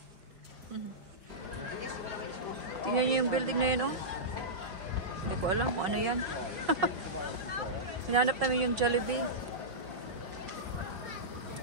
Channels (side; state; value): left; late; 5.4 ms